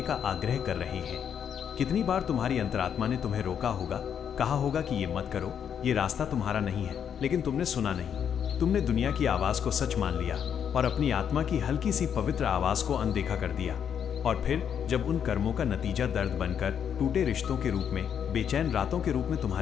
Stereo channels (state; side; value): quieter; right; 8.3 dB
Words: का आग्रह कर रहे हैं। कितनी बार तुम्हारी अंतरात्मा ने तुम्हें रोका होगा, कहा होगा कि ये मत करो, ये रास्ता तुम्हारा नहीं है, लेकिन तुमने सुना नहीं। तुमने दुनिया की आवाज को सच मान लिया और अपनी आत्मा की हल्की सी पवित्र आवाज को अनदेखा कर दिया। और फिर जब उन कर्मों का नतीजा दर्द बनकर, टूटे रिश्तों के रूप में, बेचैन रातों के रूप में